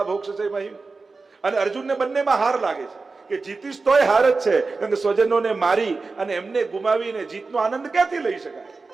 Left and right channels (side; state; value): left; quieter; 4.0 dB